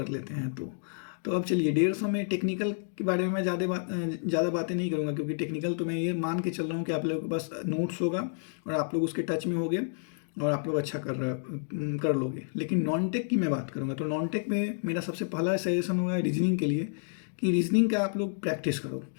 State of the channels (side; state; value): right; silent; digital silence